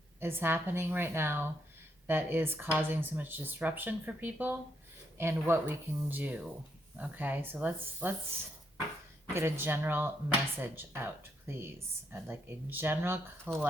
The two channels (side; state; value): both; normal; correlation 0.76